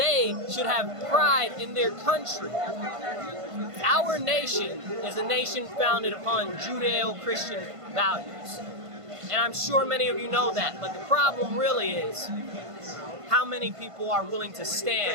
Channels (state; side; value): late; left; 1.5 ms